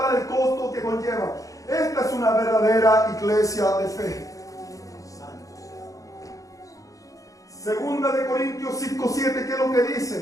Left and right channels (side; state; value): right; late; 0.16 ms